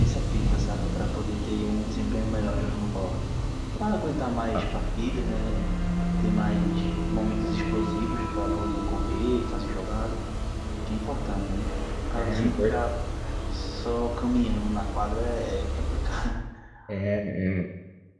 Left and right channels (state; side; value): identical; both; correlation 1.00